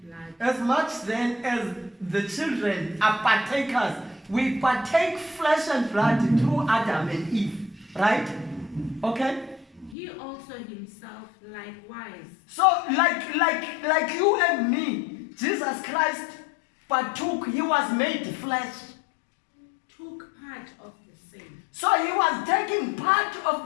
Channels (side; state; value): right; drops out; at 10.0 s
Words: blood, As much then as the children are partakers, we partake flesh and blood through Adam and Eve, right? Okay? he also himself likewise So like you and me, Jesus Christ partook, he was made flesh. took part of the same. So he was taking part of